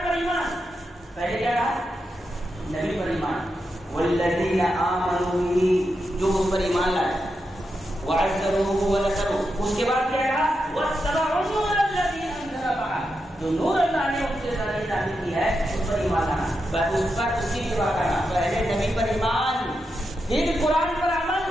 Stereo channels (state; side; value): normal; both; correlation 0.86